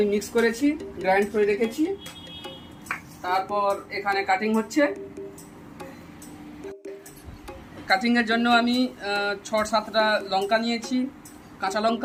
মিক্স করেছি, গ্রাইন্ড করে রেখেছি। তারপর এখানে কাটিং হচ্ছে। কাটিংয়ের জন্য আমি 6-7টা লঙ্কা নিয়েছি, কাঁচা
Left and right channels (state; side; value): identical; both; correlation 1.00